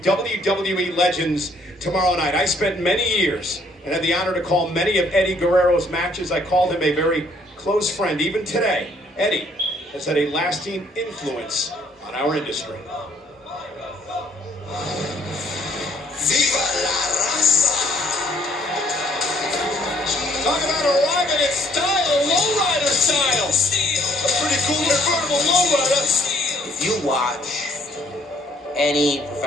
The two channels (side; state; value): both; normal; correlation 0.64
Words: WWE Legends, tomorrow night. I spent many years and had the honor to call many of Eddie Guerrero's matches. I called him a very close friend. Even today, Eddie has had a lasting influence on our industry. Viva la raza! Talk about arriving in style, lowrider style. A pretty cool convertible lowrider. If you watch any